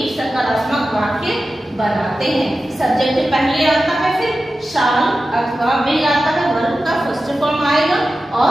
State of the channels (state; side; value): normal; both; correlation 0.93